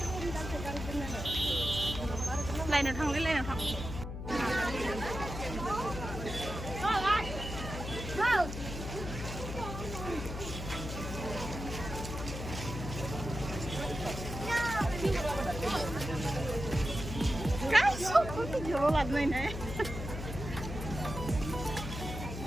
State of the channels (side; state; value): left; noise; hum, 7 dB below the sound